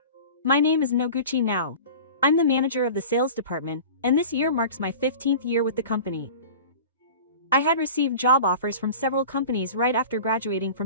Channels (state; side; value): inverted; both; correlation -0.37